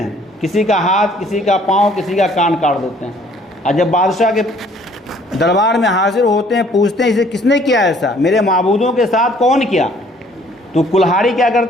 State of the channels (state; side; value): normal; both; correlation 0.59